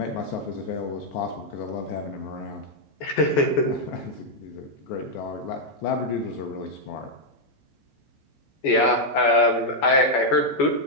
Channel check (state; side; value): late; right; 14 ms